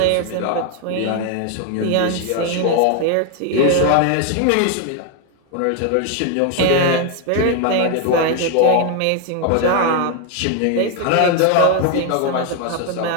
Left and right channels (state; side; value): different; both; correlation 0.00